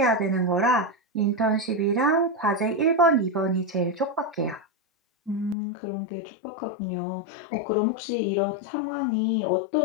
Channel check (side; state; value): right; drops out; at 5.6 s